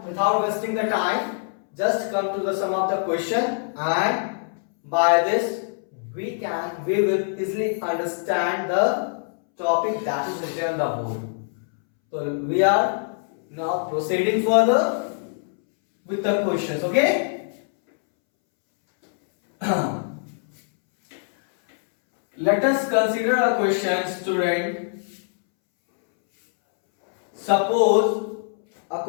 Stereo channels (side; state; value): right; silent; 63 dB below the other